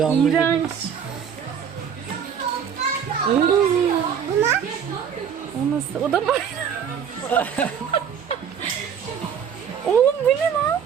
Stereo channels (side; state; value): left; quieter; 7.7 dB